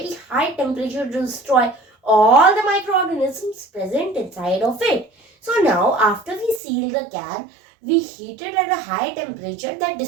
high temperature to destroy all the microorganisms present inside of it. So now after we seal the can, we heat it at a high temperature that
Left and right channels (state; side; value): drops out; left; at 6.6 s